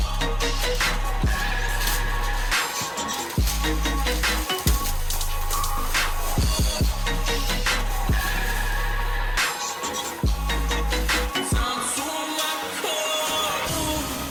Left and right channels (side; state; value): both; identical; correlation 1.00